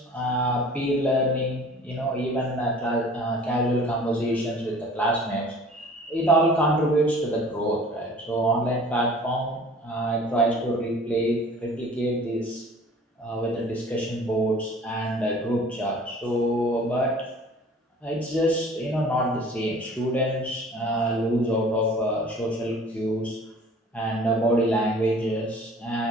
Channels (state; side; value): normal; both; correlation 0.48